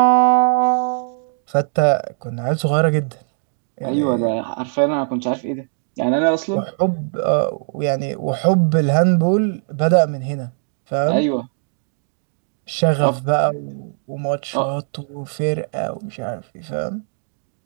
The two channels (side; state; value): left; silent; digital silence